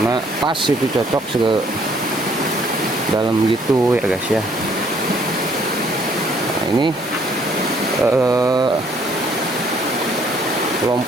pas itu cocok dalam gitu ya guys ya. Nah ini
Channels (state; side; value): normal; both; correlation 0.64